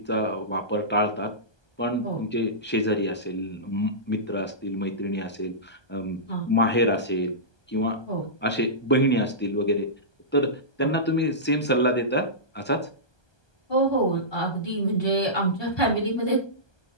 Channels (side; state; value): right; late; 1.2 ms